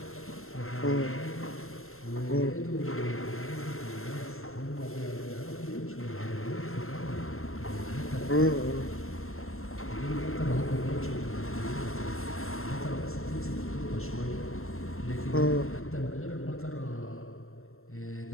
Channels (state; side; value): late; right; 0.62 ms